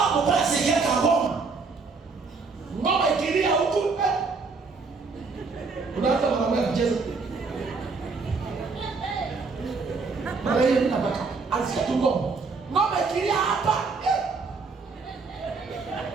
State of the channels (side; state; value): left; quieter; 4.5 dB